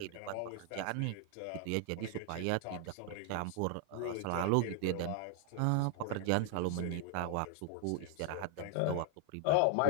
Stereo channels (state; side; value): different; both; correlation 0.00